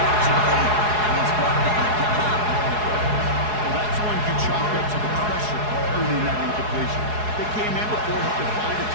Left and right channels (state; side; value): late; left; 4.7 ms